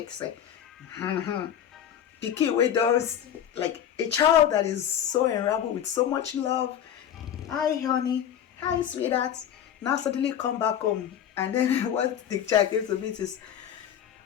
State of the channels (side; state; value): right; quieter; 9.7 dB